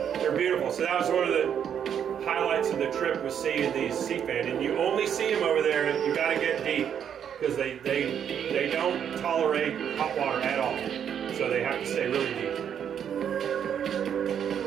They're beautiful. So that was one of the highlights of the trip, was seeing these sea fan. And you only see them over there, and you got to get deep, because they don't tolerate hot water at all. So they have to stay really deep.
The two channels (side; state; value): left; quieter; 8.6 dB